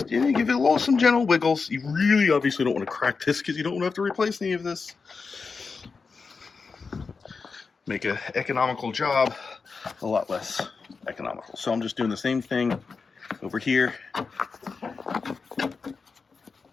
give it some gentle wiggles. You really obviously don't want to crack this because you don't want to have to replace any of this. Make an economical job a lot less economical. So I'm just doing the same thing over here.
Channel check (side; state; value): right; quieter; 4.8 dB